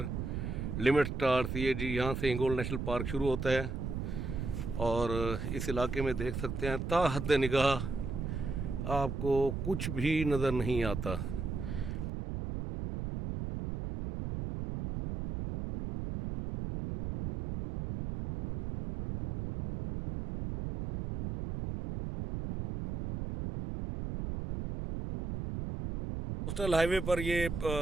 limit stars. ये जी यहाँ से हिंगोल नेशनल पार्क शुरू होता है और इस इलाके में देख सकते हैं ता हद निगाह आपको कुछ भी नज़र नहीं आता। कोस्टल हाईवे पर ये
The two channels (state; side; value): noise; right; rumble, 4 dB below the sound